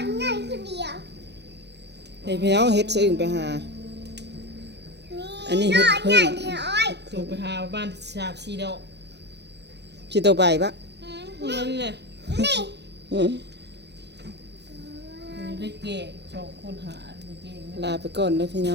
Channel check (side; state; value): left; late; 0.50 ms